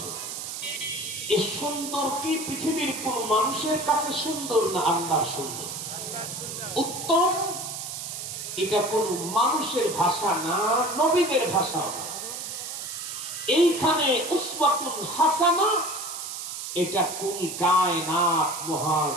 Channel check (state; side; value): noise; right; hiss, 7 dB below the sound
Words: এই সুন্দর কি পৃথিবীর কোন মানুষের কাছে সুন্দর না আল্লাহর সুন্দর? উত্তম এটা কোন মানুষের ভাষা না, নবীদের ভাষা। এইখানে উসওয়াতুল হাসানা এটা কোন কায়নাত, মহান